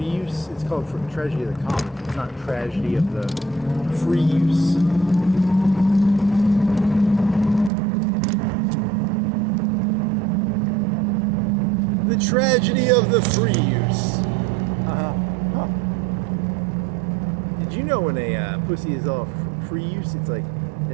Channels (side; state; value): left; drops out; at 7.7 s